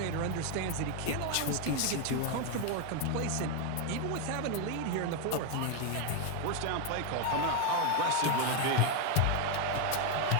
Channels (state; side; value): different; both; correlation 0.01